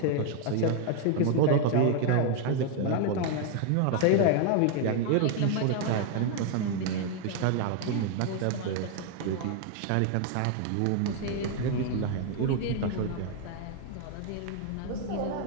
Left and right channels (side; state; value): both; different; correlation 0.00